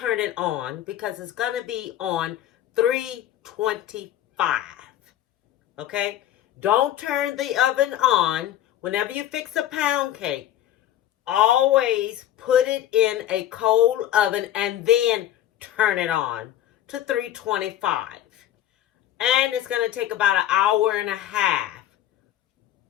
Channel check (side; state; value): right; quieter; 12.1 dB